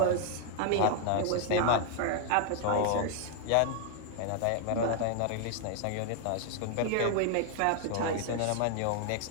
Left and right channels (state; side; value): different; both; correlation 0.00